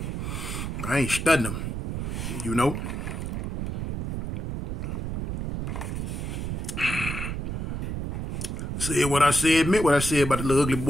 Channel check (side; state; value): right; noise; rumble, 3 dB below the sound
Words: I ain't studying them, Said what I said, meant what I said about the little ugly